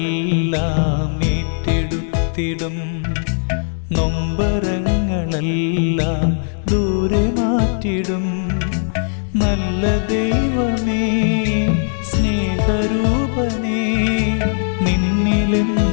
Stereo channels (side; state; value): right; silent; digital silence